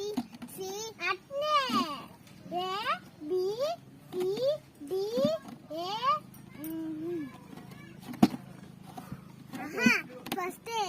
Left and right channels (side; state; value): both; identical; correlation 1.00